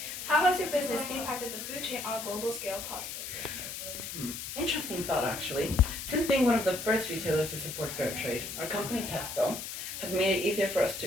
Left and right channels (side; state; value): left; noise; hiss, 7 dB below the sound